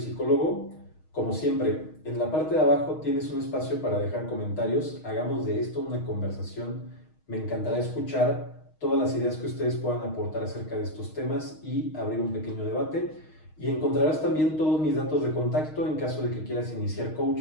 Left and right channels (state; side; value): late; right; 6.4 ms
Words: Como siempre, en la parte de abajo tienes un espacio para dejar comentarios. Hagamos de esto una conversación. Me encantará escuchar todas las ideas que ustedes puedan aportar acerca de estos temas y abrir un pequeño debate. Y encontrarás también todos mis datos de contacto en caso de que quieras iniciar